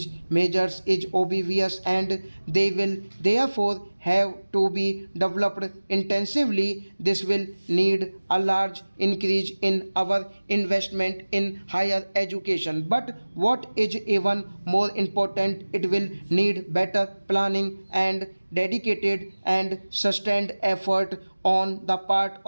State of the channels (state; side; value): inverted; both; correlation -1.00